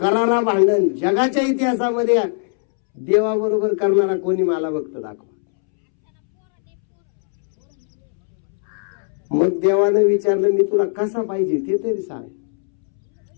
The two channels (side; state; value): right; silent; 66 dB below the other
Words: भांडण जगाच्या इतिहासामध्ये देवाबरोबर करणारा कोणी मला भक्त दाखवा. मग देवानं विचारलं मी तुला कसा पाहिजे ते तरी सांग.